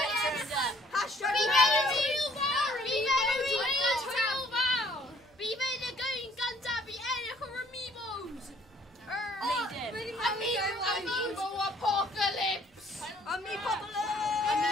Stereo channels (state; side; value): normal; both; correlation 0.60